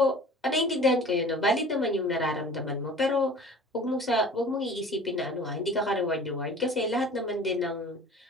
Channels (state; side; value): normal; both; correlation 0.44